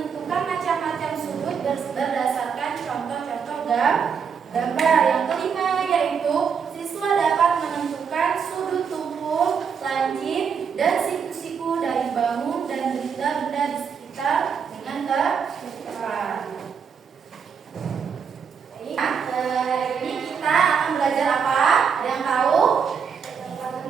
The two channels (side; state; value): left; quieter; 6.6 dB